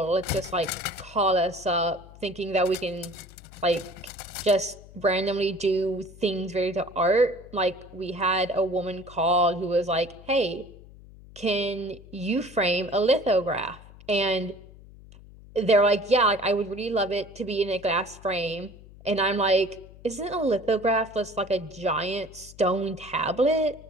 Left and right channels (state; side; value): noise; left; hum, 20 dB below the sound